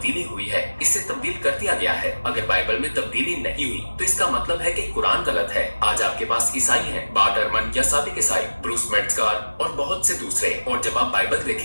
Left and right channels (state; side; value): inverted; both; correlation -1.00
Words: ہوئی ہے، اسے تبدیل کر دیا گیا ہے. اگر بائبل میں تبدیلی نہیں ہوئی تو اس کا مطلب ہے کہ قرآن غلط ہے. آج آپ کے پاس عیسائی ہیں، بارٹ ارمن یا سابق عیسائی، بروس میٹزکار اور بہت سے دوسرے، اور جب آپ بائبل